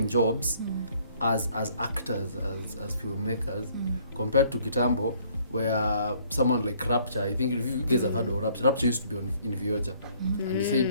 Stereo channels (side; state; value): both; inverted; correlation -0.61